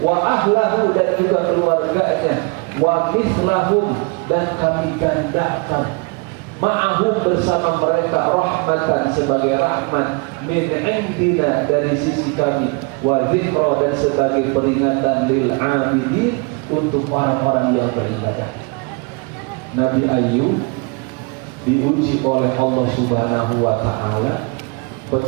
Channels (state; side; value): quieter; left; 30.6 dB